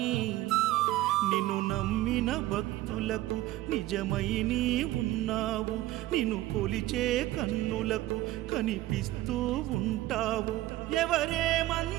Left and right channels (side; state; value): left; quieter; 16.1 dB